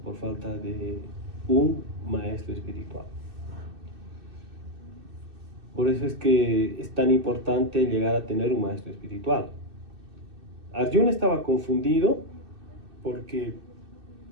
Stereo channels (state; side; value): late; left; 2.6 ms